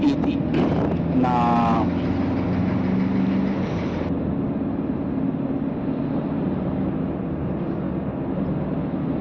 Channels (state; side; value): identical; both; correlation 1.00